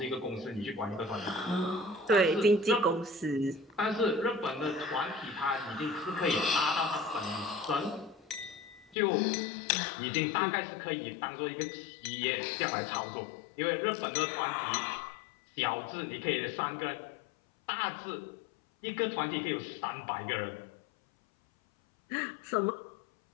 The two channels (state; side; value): drops out; right; at 9.0 s